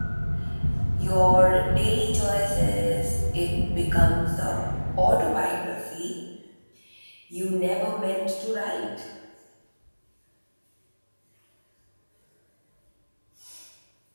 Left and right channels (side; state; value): both; inverted; correlation -1.00